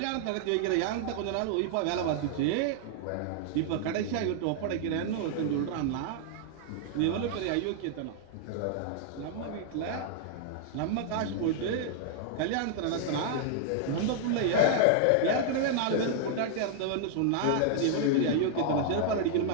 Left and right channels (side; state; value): both; different; correlation -0.01